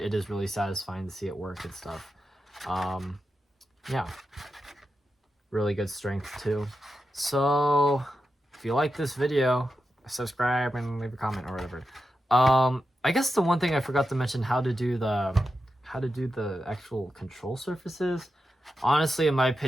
it is really satisfying to see it work and stuff. Yeah, really good strength too. So if you like this video, subscribe and leave a comment or whatever. I guess the one thing I forgot to mention, how to do the actual control surfaces. Honestly, in my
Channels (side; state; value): both; normal; correlation 0.89